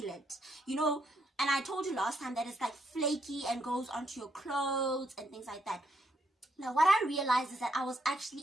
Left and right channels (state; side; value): normal; both; correlation 0.75